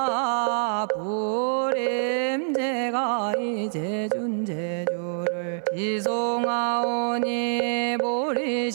부림 제가 이제 준제주를 지송하오니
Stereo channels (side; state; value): left; silent; 57 dB below the other